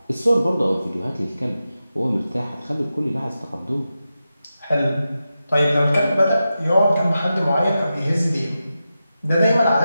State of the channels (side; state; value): both; inverted; correlation -0.91